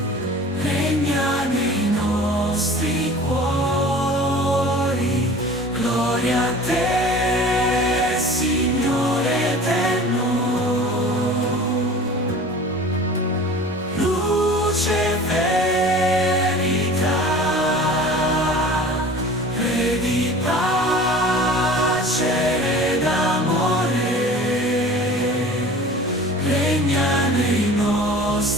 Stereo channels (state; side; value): normal; both; correlation 0.42